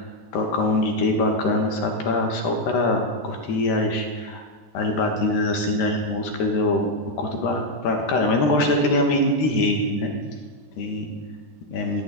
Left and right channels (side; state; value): right; late; 13 ms